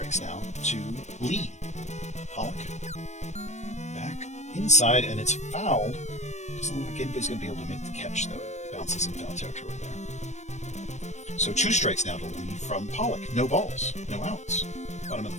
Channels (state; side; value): late; right; 0.34 ms